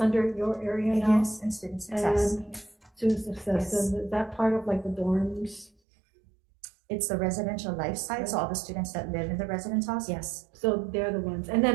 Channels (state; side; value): drops out; left; at 5.7 s